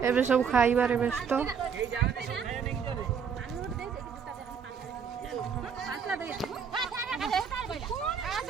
एबे सब खाइबारे व्यस्त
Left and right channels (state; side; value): quieter; left; 6.7 dB